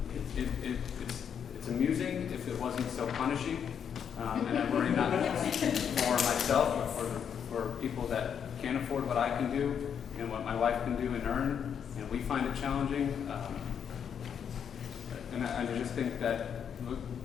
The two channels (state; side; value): quieter; right; 7.9 dB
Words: it's amusing if it wasn't so punishing, and I worry not just for myself, but for people that can't afford what I can do and what my wife can do and earn, and we find it challenging. And I just think that